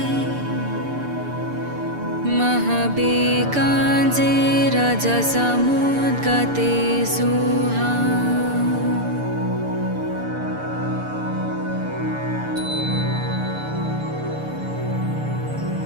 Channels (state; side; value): late; left; 6.8 ms